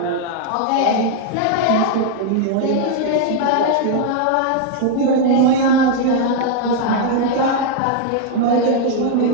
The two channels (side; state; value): both; different; correlation 0.00